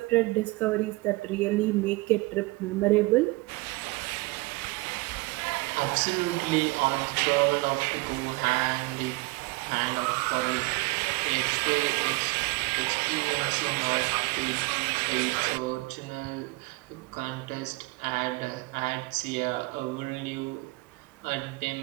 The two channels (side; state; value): left; quieter; 23.4 dB